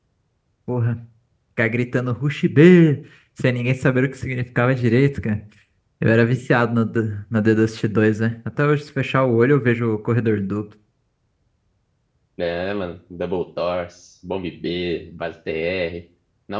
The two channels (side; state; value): both; identical; correlation 1.00